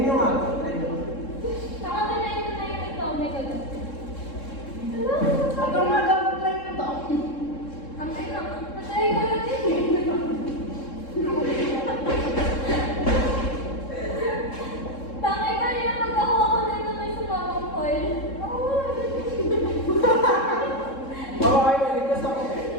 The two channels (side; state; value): right; late; 3.7 ms